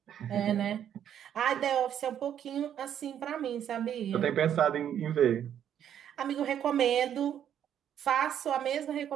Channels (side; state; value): left; quieter; 9.7 dB